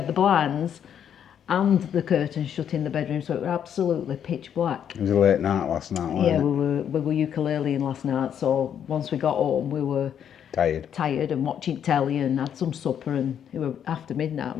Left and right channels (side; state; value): right; quieter; 8.9 dB